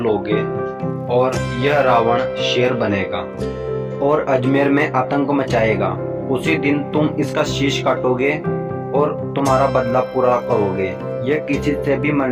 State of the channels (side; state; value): both; identical; correlation 1.00